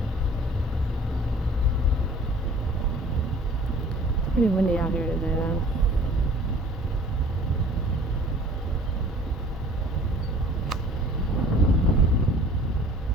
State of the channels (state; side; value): normal; both; correlation 0.50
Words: it's pretty windy out here today though.